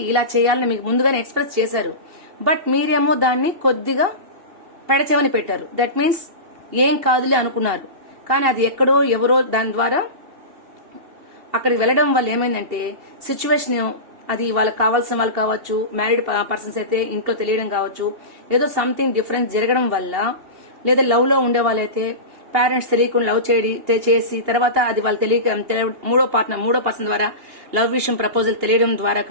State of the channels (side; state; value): left; late; 2.8 ms